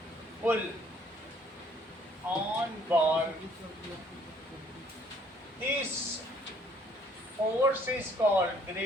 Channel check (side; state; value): both; normal; correlation 0.61